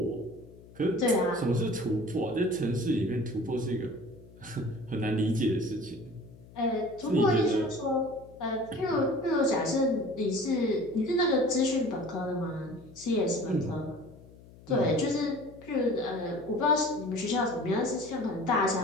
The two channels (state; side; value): noise; left; hum, 22 dB below the sound